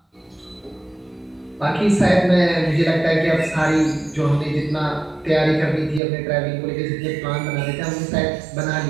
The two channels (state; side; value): drops out; left; at 6.0 s